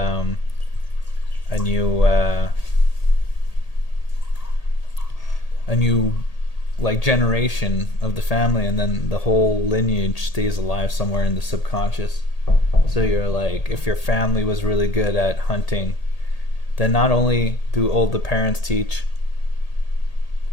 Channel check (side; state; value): right; late; 1.8 ms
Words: new like generation of the family, and then the whole lineage stays alive somewhere in the subconscious. So you're like, if your family was really good at hunting, then not only do all the parents teach,